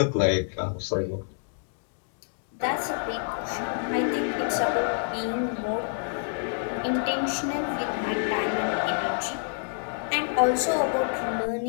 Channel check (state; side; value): silent; right; digital silence